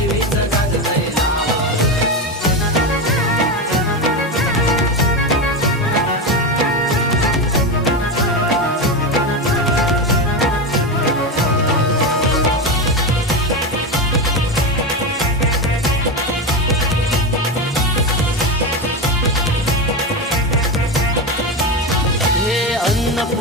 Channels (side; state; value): both; normal; correlation 0.16